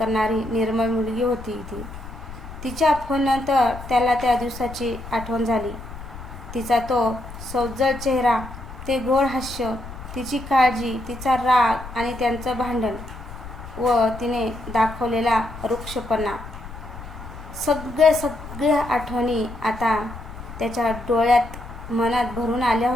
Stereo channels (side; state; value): left; noise; rumble, 13 dB below the sound